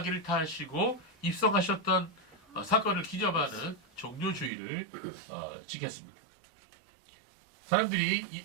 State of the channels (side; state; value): left; drops out; at 4.5 s